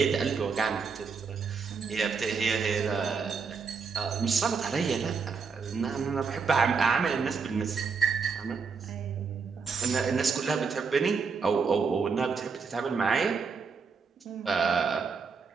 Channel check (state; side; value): quieter; left; 5.3 dB